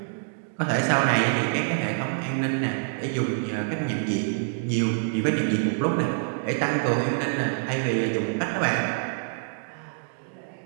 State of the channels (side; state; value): left; silent; digital silence